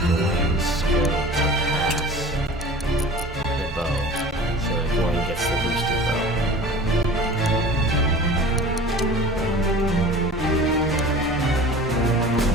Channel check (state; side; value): normal; both; correlation 0.41